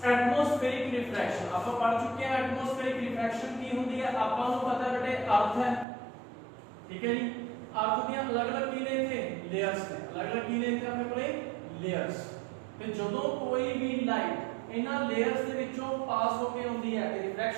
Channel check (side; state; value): left; drops out; at 5.9 s